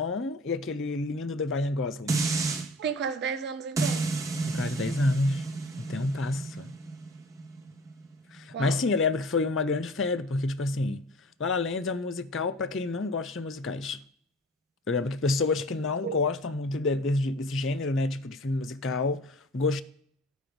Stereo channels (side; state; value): both; normal; correlation 0.44